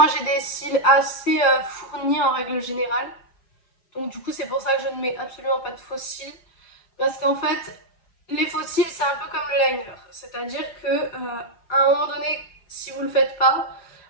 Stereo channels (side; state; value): right; late; 5.6 ms